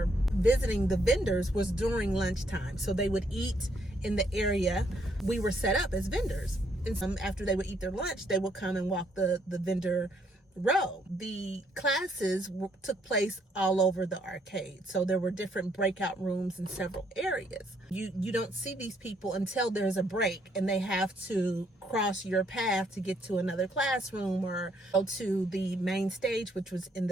visiting the vendors was during lunchtime. So they would eat in the area we were set up as vendors. And after they would eat their lunch, they would come and walk the vendor row. The classes took place all over the arcade. So there were different breakout rooms in several areas. You don't see these people until there's a break and they have to cross your path to get to another classroom or go to the main stage, which was in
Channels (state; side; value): normal; both; correlation 0.70